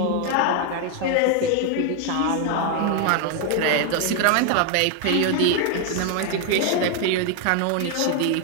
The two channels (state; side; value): different; both; correlation 0.01